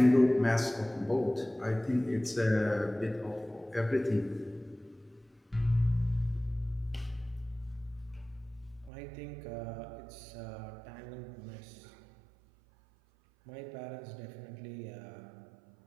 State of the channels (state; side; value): drops out; left; at 8.9 s